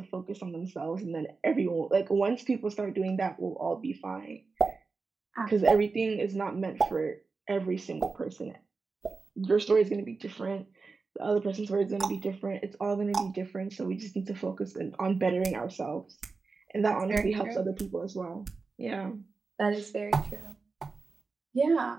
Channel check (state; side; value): quieter; left; 4.3 dB